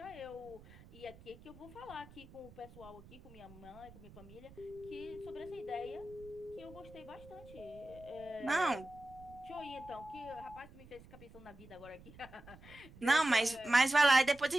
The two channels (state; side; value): noise; right; rumble, 20 dB below the sound